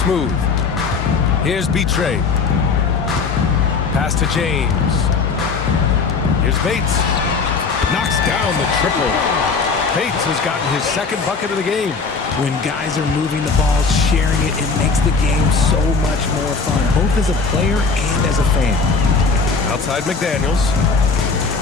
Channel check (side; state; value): right; quieter; 4.7 dB